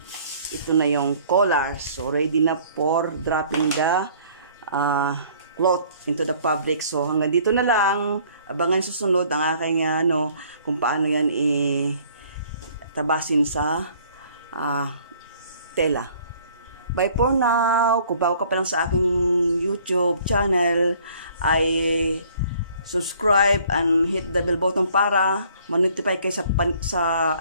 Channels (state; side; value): inverted; both; correlation -0.57